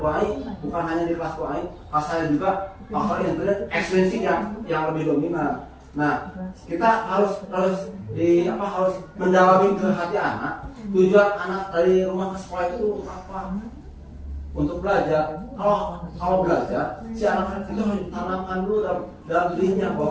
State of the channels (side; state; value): both; identical; correlation 1.00